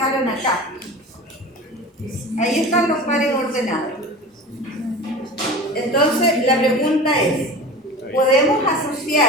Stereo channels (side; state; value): both; normal; correlation 0.34